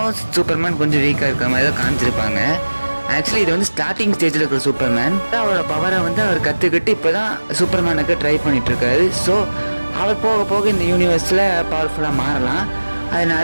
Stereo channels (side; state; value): both; inverted; correlation -1.00